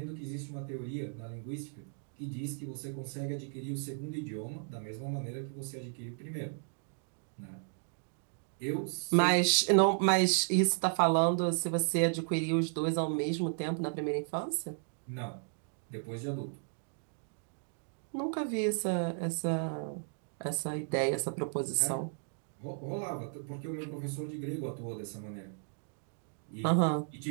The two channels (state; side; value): silent; left; 55 dB below the other